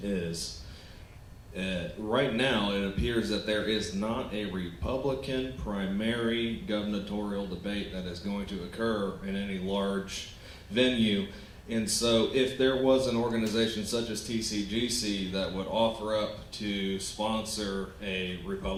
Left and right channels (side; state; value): both; identical; correlation 1.00